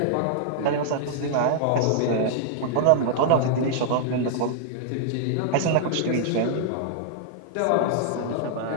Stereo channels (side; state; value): both; different; correlation -0.01